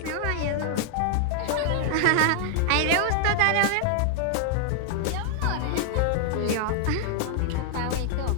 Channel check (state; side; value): different; both; correlation 0.00